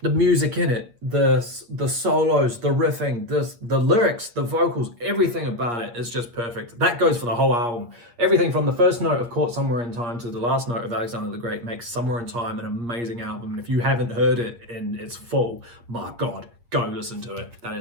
The music in it, the solos, the riffing, the lyrics, the vocals, everything about it is just perfect. That goes for the whole album. Everything from the first note of Caught Somewhere in Time to the last note of Alexander the Great makes Somewhere in Time an amazing album. And if you haven't heard it in its full, my God, go listen to it. That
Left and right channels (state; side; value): late; left; 8.5 ms